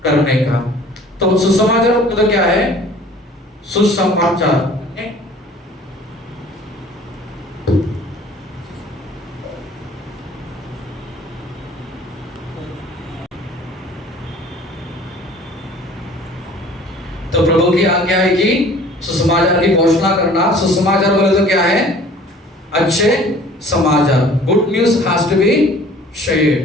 करने का। तो सुसमाचार तो क्या है, सुसमाचार तो प्रभु की आज्ञा है कि सुसमाचार की घोषणा करना। सुसमाचार बोले तो क्या है, अच्छे समाचार। Good news has to be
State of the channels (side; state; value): both; normal; correlation 0.50